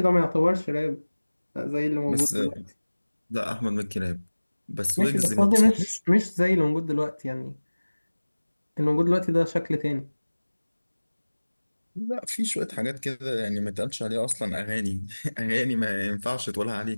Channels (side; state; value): both; inverted; correlation -1.00